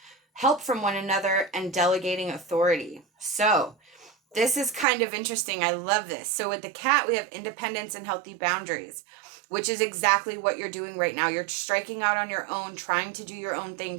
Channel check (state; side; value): drops out; left; at 4.9 s